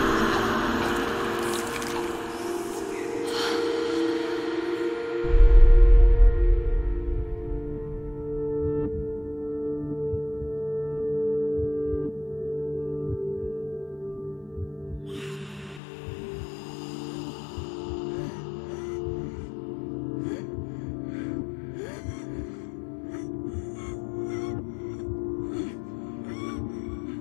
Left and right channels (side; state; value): right; drops out; at 15.8 s